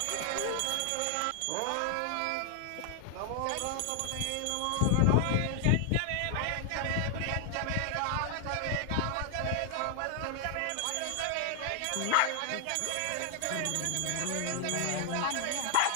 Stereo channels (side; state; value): both; different; correlation 0.00